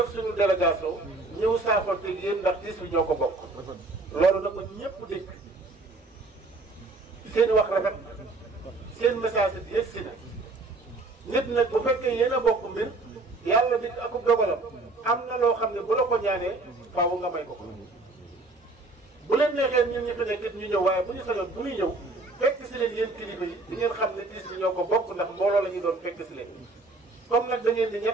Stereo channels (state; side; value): quieter; left; 3.2 dB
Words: suñu délégation ñëw saafonte yéen ndax tiis bi ñoo ko bokk loolu na ko ñëpp dégg seen wax rafet seen message bi yegg si na nit nag bu fekkee yéen a bokk mbir yàlla di akub dogalam am na loo xam ne bu la ko ñaanee faaw nga may ko bu leen neexee ñun ñi fi nekk ñu ñëw waaye bu ñu sañoon bu ñuy ñëw fekk si leen yéen kilifa yi di ngeen xam ne tiis bi ñoo ko bokk ndax mbooloo la ñuy doon fekk si leen comme nag da ngeen di